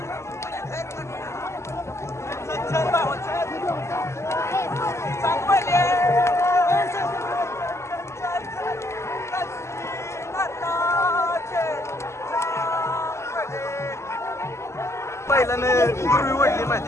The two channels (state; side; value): late; right; 0.13 ms